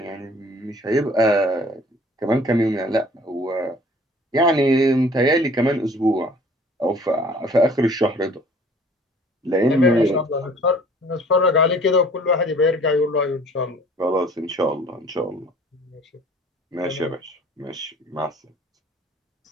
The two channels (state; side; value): normal; both; correlation 0.52